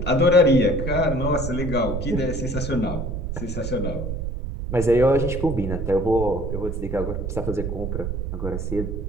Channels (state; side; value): noise; right; rumble, 4 dB below the sound